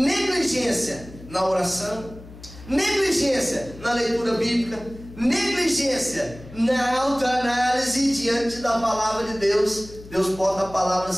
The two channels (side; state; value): left; noise; hum, 18 dB below the sound